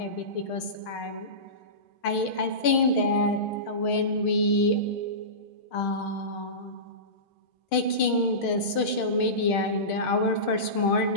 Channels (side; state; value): right; late; 6.5 ms